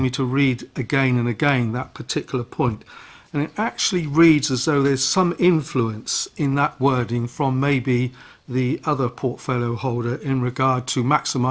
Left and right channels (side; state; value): both; identical; correlation 1.00